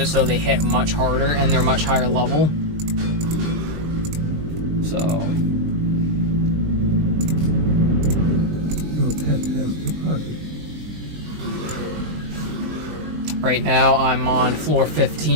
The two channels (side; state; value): left; late; 20 ms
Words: so they hit much harder and they're much higher level. So Your pet has departed. right now I'm on floor